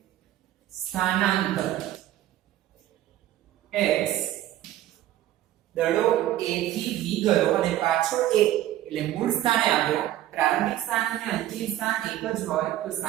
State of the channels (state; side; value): quieter; left; 13.4 dB